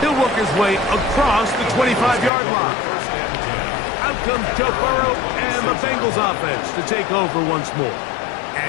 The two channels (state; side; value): drops out; right; at 2.3 s